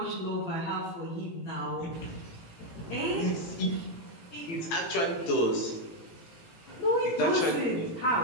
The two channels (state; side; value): late; right; 18 ms